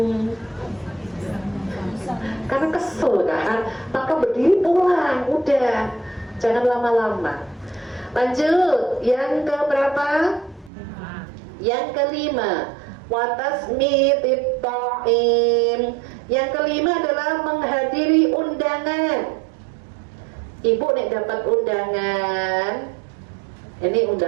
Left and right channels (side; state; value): left; drops out; at 10.7 s